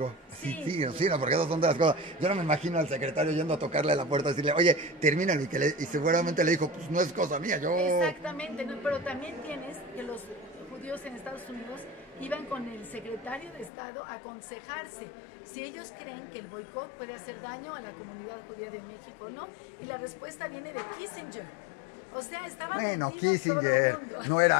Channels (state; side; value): drops out; right; at 13.7 s